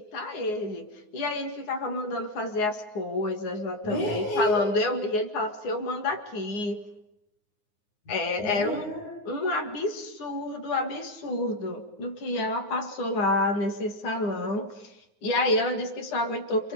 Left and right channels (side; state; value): right; late; 9.6 ms